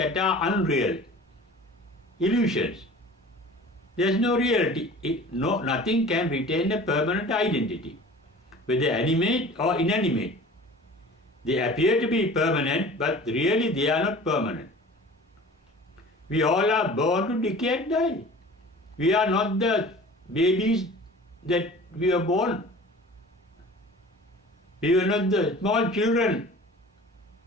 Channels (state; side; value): normal; both; correlation 0.43